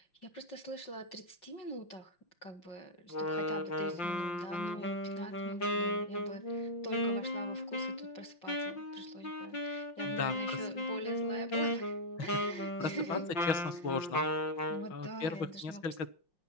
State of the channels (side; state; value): right; late; 5.7 ms